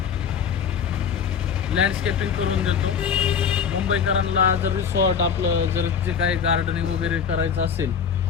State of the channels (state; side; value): quieter; right; 7.0 dB